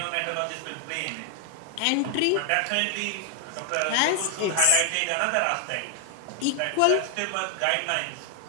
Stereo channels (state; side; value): different; both; correlation 0.00